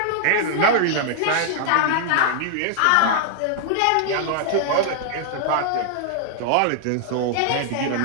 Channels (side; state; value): both; different; correlation -0.01